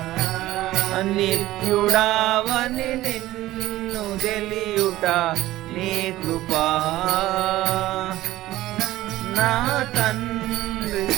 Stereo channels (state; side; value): quieter; left; 16.1 dB